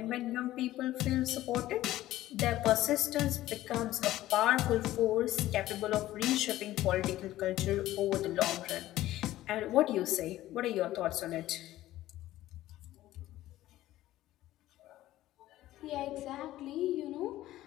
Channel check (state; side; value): quieter; right; 15.0 dB